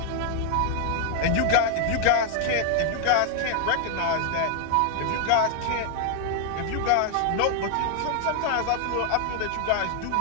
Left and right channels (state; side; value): different; both; correlation 0.00